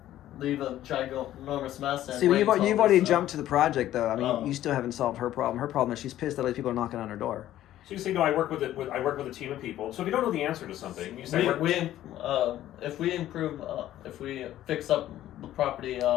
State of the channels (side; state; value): right; quieter; 13.2 dB